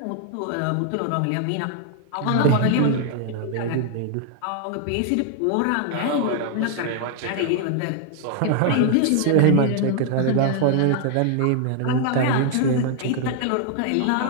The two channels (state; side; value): different; both; correlation 0.00